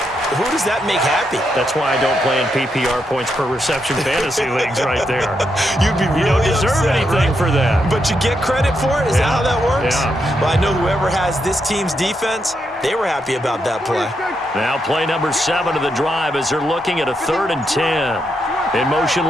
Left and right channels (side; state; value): both; normal; correlation 0.81